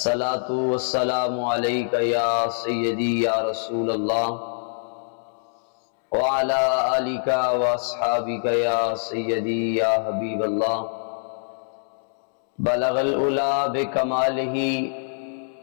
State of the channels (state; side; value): silent; right; 62 dB below the other